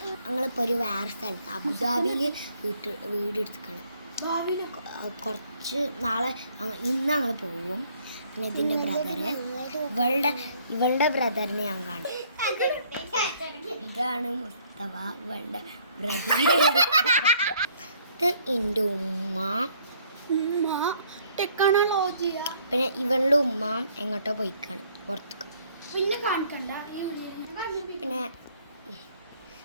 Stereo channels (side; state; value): both; inverted; correlation -0.62